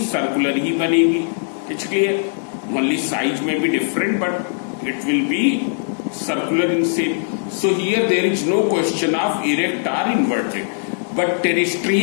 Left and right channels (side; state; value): right; silent; digital silence